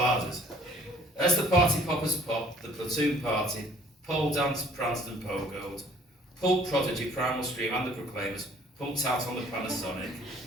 As the party poppers popped, the platoon partied, pole danced, pranced and pogoed. Pulp Prodigy, Primal Scream and the Proclaimers pumped out on the Panasonic.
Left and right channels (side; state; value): both; normal; correlation 0.56